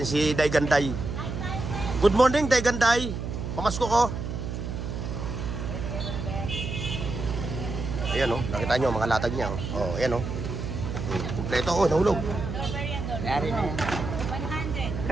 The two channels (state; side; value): noise; right; hum, 5 dB below the sound